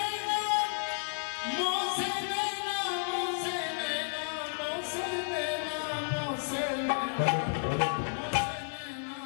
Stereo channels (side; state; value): right; silent; 56 dB below the other